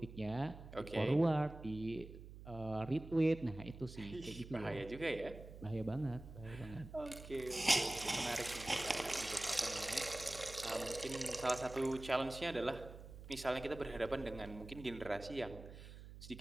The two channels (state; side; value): noise; right; hum, 14 dB below the sound